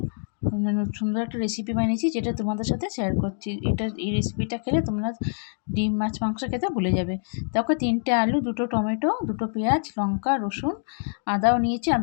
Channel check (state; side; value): silent; right; digital silence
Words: সুন্দর একটা রেসিপি বানিয়েছি, যেটা তোমাদের সাথে শেয়ার করছি। এই রেসিপিটা খেলে তোমরা ডিম মাছ মাংস খেতে ভুলে যাবে। দেখো, 3টে আলু, 2টো টমেটো, 2টো পেঁয়াজ, লঙ্কা, রসুন, আদাও নিয়েছি।